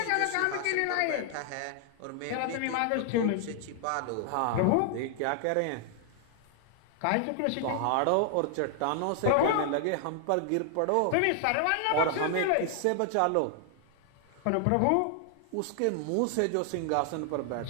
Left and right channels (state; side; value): different; both; correlation 0.00